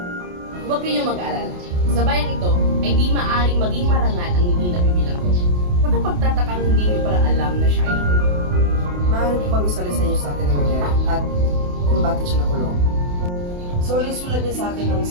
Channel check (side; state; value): left; late; 28 ms